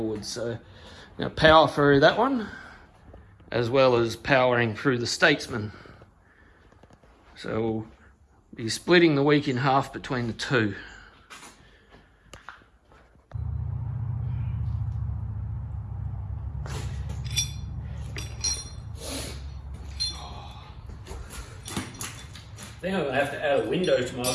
So I'm going to power through that one, as well as powering through the Statesman. So we'll be splitting the week in half between the two. think I'm going to have to add a window to my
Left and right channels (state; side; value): identical; both; correlation 1.00